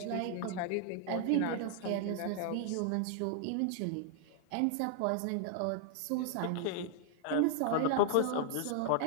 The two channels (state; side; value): different; both; correlation 0.00